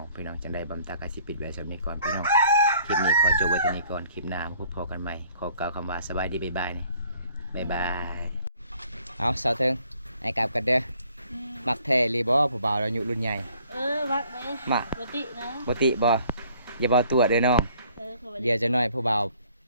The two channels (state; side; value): inverted; both; correlation -0.59